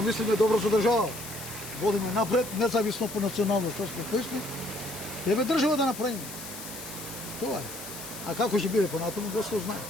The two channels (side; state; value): left; noise; hiss, 11 dB below the sound